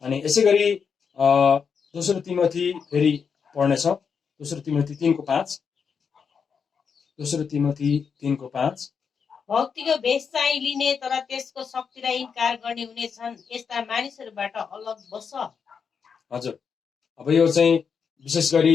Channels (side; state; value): right; quieter; 6.3 dB